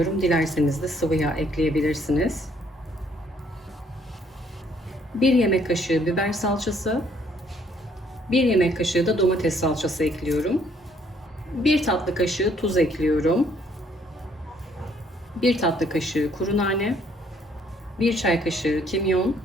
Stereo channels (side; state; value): both; normal; correlation 0.66